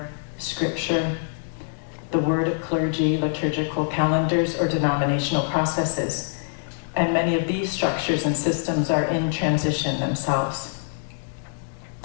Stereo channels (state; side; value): silent; right; 62 dB below the other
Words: scripture, the word of clergy, liturgical calendars, or denominational processes. And many of these structures and systems are in transition themselves.